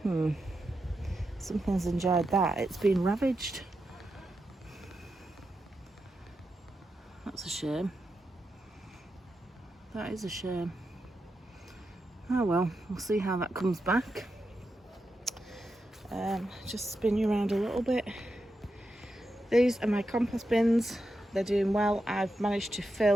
Something's enjoyed that. It's been ravaged. That's a shame. That is a shame. Oh well, we'll see how that comes back. Just spin you around a little bit. These are my compost bins. They're doing well. I've managed to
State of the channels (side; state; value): both; normal; correlation 0.87